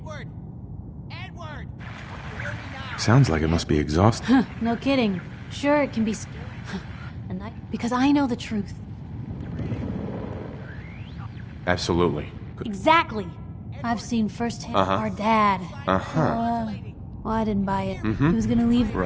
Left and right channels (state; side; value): identical; both; correlation 1.00